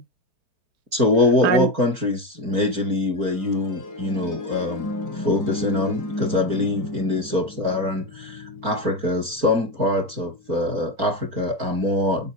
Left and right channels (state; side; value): late; left; 4.4 ms